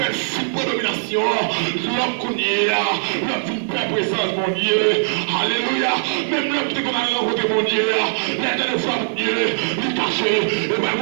il prend domination. L'homme qu'on y est, l'homme d'une paix présence, mon Dieu. Alléluia. Même l'homme qui est qu'on a rencontré, mon Dieu. L'un de fois, mon Dieu, il est caché. Et ben,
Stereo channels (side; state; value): left; silent; digital silence